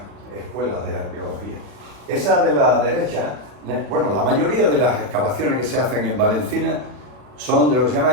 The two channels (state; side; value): late; left; 40 ms